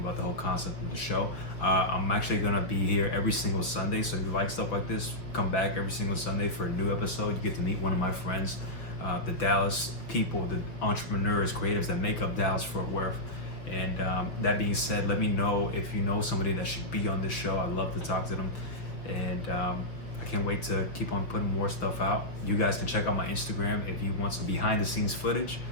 the whole concept of the show. I'm actually gonna be here every single Sunday, so if you like stuff like this, come back every single Sunday for a new episode. You get to meet one of my friends, the Dallas people, the entrepreneurs, creatives that make up Dallas Fort Worth. And that being said, let me know if you know somebody that should be on this show. I'd love to talk to them. And I can't wait to keep on putting more stuff out. You guys can check out my Instagram if you want some behind the scenes footage.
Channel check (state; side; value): late; right; 5.8 ms